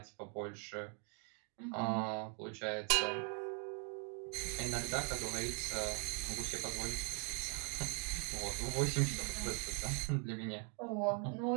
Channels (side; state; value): left; quieter; 38.3 dB